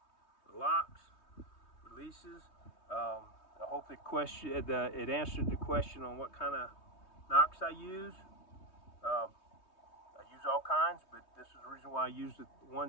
the locks, releases. I hope it answered the question on what kind of knocks I use. I use all kinds, but this is the reason why I use the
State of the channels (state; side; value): late; right; 3.2 ms